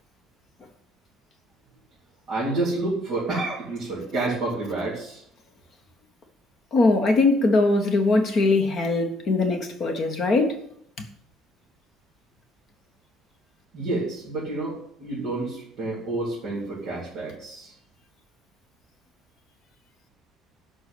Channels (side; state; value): both; normal; correlation 0.66